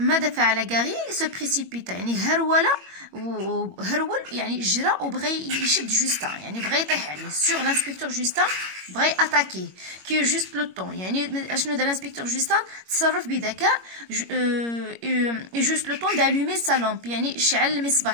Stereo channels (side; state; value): left; late; 21 ms